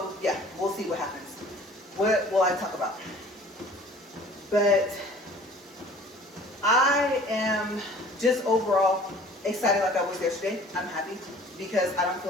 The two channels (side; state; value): both; normal; correlation 0.49